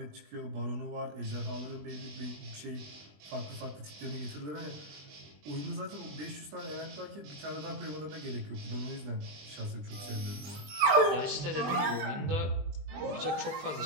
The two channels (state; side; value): late; left; 20 ms